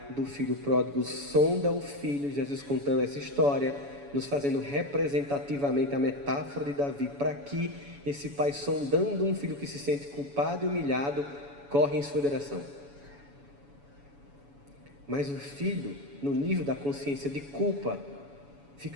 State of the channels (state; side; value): late; left; 7.1 ms